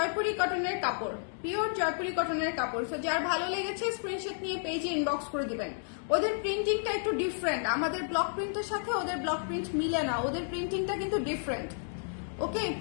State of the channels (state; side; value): silent; right; digital silence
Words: কটনের কাপড়, পিওর জয়পুরি কটনের কাপড়। সো যার ভালো লেগেছে স্ক্রিনশট নিয়ে পেজে ইনবক্স করে দিবেন। ওদের প্রিন্টিংটা একটু ডিফারেন্ট, আমাদের ব্লক প্রিন্টের সাথে ওদের ব্লক প্রিন্ট মিলে না, ওদের প্রিন্টিংটা কিন্তু different. Okay,